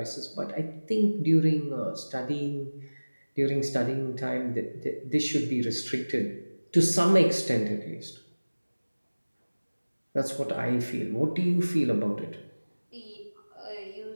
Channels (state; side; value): inverted; both; correlation -1.00